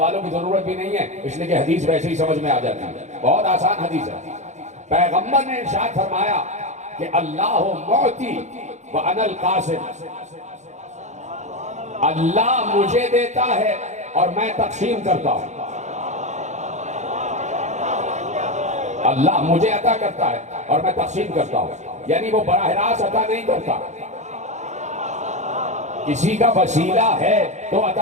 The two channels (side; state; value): left; late; 0.34 ms